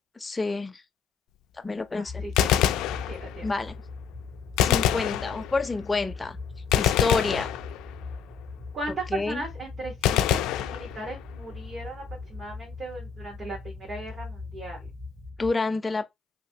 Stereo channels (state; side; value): quieter; right; 6.2 dB